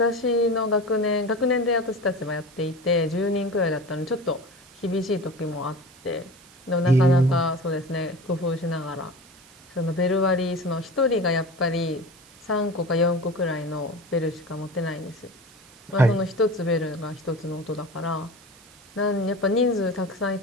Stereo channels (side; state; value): right; noise; hiss, 25 dB below the sound